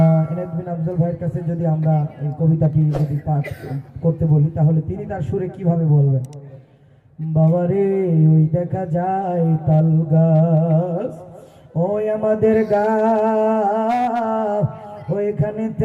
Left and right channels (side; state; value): both; identical; correlation 1.00